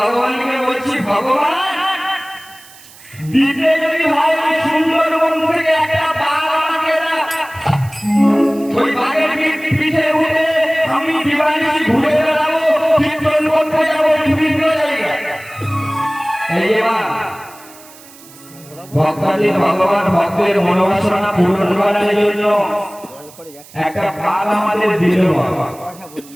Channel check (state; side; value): noise; right; hiss, 22 dB below the sound